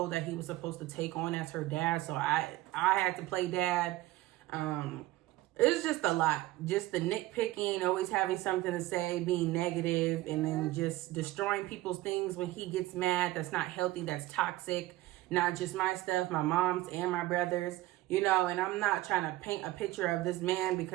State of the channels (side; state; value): left; quieter; 17.0 dB